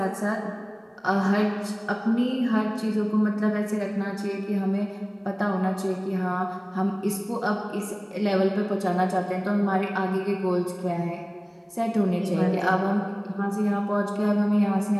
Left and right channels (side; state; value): both; identical; correlation 1.00